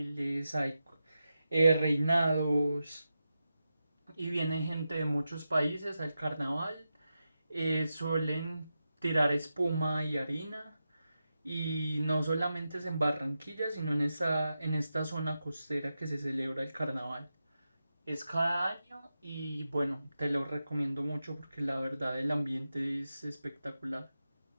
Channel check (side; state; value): both; inverted; correlation -0.90